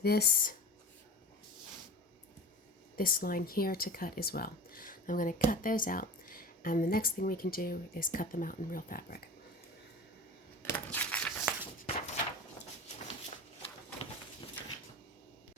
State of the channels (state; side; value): normal; both; correlation 0.34